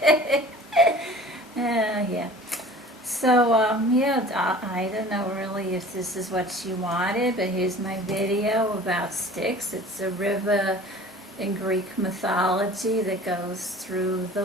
Yeah. So, I don't know really if this is what she wanted, but here's my video about Styx. It's a river in Greek mythology that goes through the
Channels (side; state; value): both; normal; correlation 0.45